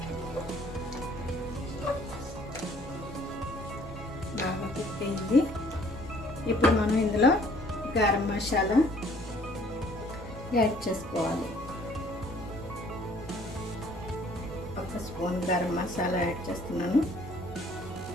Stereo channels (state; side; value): normal; both; correlation 0.58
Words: బాగా కుక్ అయింది. ఇప్పుడు మనం ఇందులో గరం మసాలా యాడ్ చేసుకోవాలి. 1 స్పూన్ గరం మసాలా యాడ్ చేస్తున్నాను.